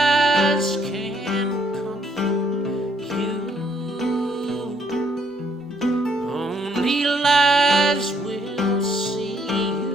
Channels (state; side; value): normal; both; correlation 0.69